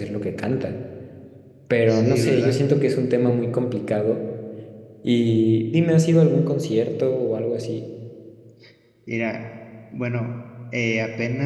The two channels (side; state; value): both; identical; correlation 1.00